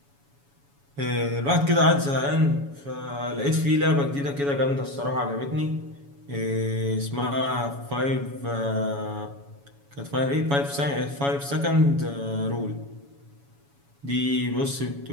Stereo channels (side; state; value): left; late; 7.1 ms